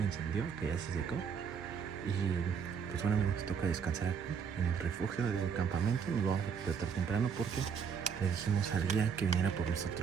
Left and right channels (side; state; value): left; quieter; 6.7 dB